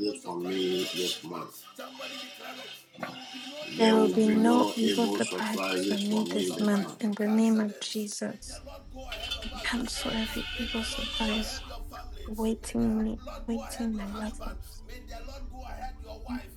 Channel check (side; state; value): both; identical; correlation 1.00